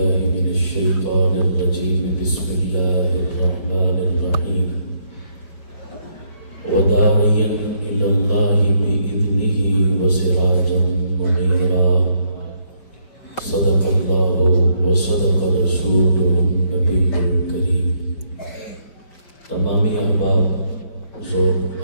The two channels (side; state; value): right; late; 5.1 ms